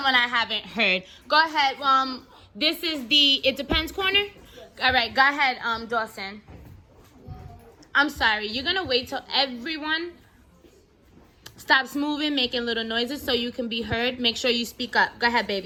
I haven't heard. Go ahead. This is the it depends corner. All right, go ahead, Dawson. I'm sorry. You're going to wait till everyone stops moving, making little noises so you can be heard. Make sure you speak up. Go ahead,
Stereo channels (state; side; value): identical; both; correlation 1.00